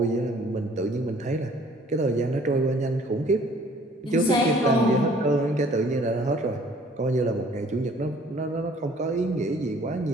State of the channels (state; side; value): normal; both; correlation 0.56